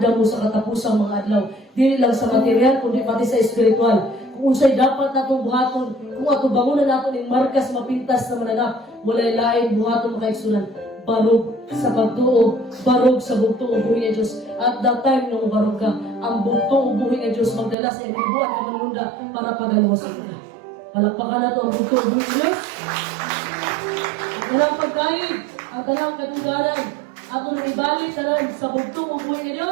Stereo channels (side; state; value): left; drops out; at 17.8 s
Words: mo sa katapusang mga adlaw. Dili lang sa material, kundi pati sa espiritual. Kung unsay dapat natong buhaton, kung ato bangunan naton ing markas mapintas na mananap, walay lain buhaton mga isunan. Barog sa pagtuo, barog sa bugtong ubuhi nga Diyos. At that time nung barog ka, ang bugtong ubuhi nga Diyos magdala sa iyong buwan ng manunda para pagalawasan ka. Palakpakan na ito ang bugtong ubuhi nga Diyos. Ang talang pagkain, ang talang katugalan, ato na ibalik talan sa bugtong ubuhi nga